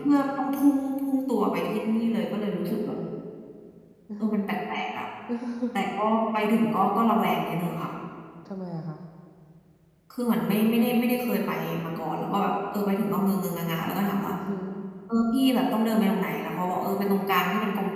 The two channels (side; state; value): both; identical; correlation 1.00